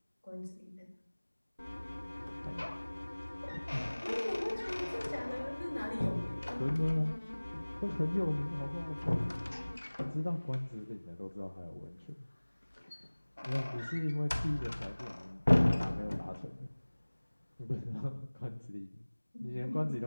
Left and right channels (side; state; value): both; inverted; correlation -1.00